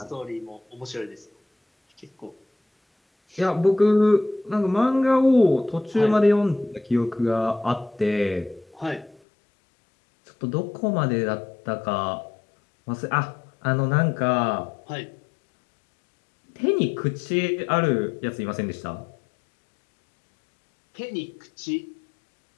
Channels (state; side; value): drops out; right; at 9.2 s